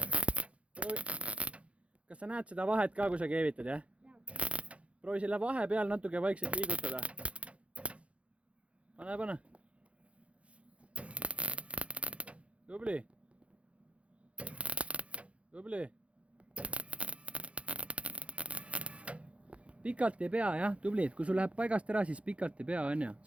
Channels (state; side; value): late; left; 0.062 ms